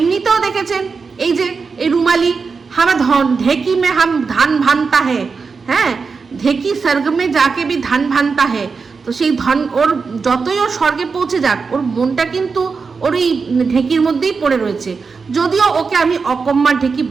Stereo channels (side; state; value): left; quieter; 5.0 dB